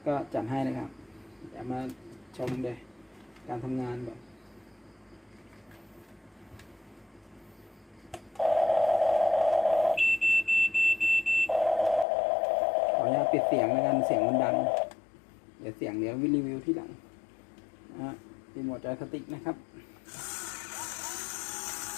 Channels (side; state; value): right; drops out; at 12.1 s